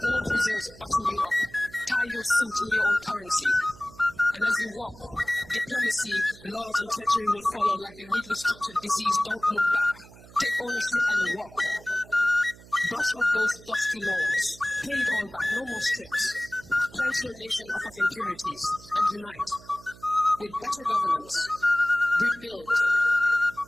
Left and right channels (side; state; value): right; noise; hum, 21 dB below the sound